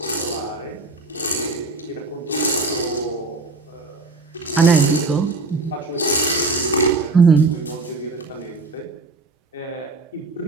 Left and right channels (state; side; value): quieter; left; 3.5 dB